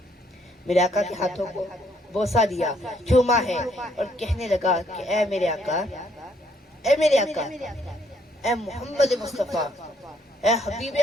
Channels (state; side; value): normal; both; correlation 0.68